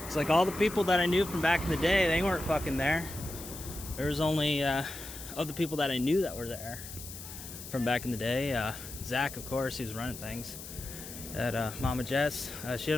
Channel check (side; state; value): left; noise; hiss, 12 dB below the sound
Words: It's like all the people that I knew from back in the day, they weren't fucking there. There was only of the people that I knew that were there from back in the day. Zach, of course, he was running things at Mama Jess. She